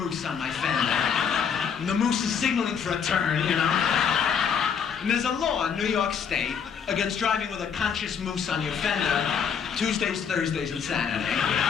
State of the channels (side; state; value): right; quieter; 7.0 dB